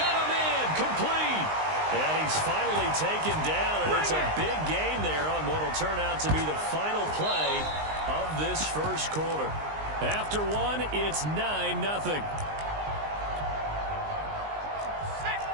a man complete. And he's finally taken down, and it's a big gain there on what will turn out to be the final play of this first quarter. After 1, it's 9-0.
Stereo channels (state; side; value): late; left; 19 ms